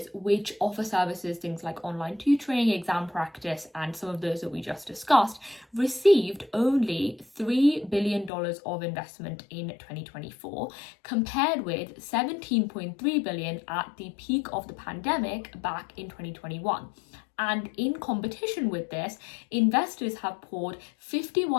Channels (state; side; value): drops out; right; at 8.3 s